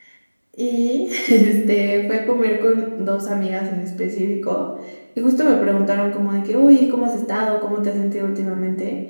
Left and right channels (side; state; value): both; inverted; correlation -1.00